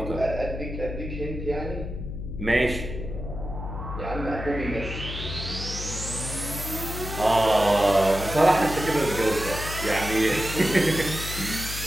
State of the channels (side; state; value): left; noise; hum, 7 dB below the sound